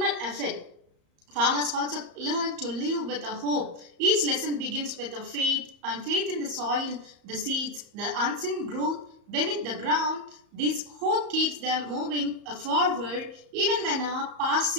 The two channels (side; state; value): left; late; 34 ms